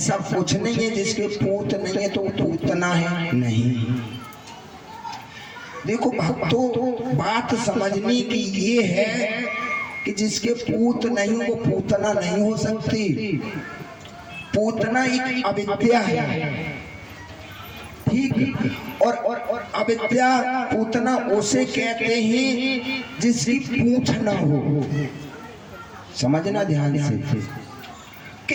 कुछ नहीं है जिसके पूत नहीं है तो पूतना है, नहीं। देखो भक्तों, बात समझने की ये है कि जिसके पूत नहीं वो पूतना नहीं हो सकती। पूतना एक अविद्या है, ठीक। और अविद्या पूतना उसे कहते हैं जिसकी पूछ ना हो। समझना ध्यान से।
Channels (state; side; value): identical; both; correlation 1.00